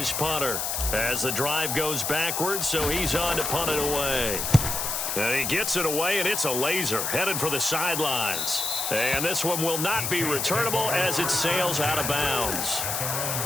punter as the drive goes backwards, so he's on to punt it away. And he gets it away, and it's a laser headed for the sidelines. And this one will not be returnable as it sails out of bounds.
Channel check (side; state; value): left; noise; hiss, 1 dB below the sound